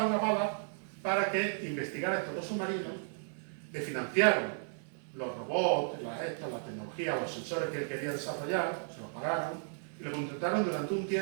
a Ballard para que investigara estos 2 submarinos, le financiaron los robots, la tecnología, los sensores que él quería desarrollar, se los pagaron y lo contrataron durante un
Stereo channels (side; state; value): left; silent; 55 dB below the other